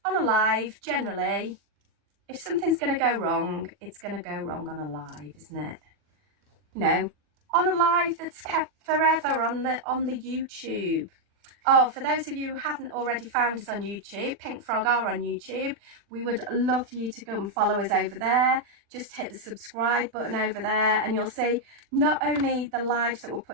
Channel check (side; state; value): left; late; 40 ms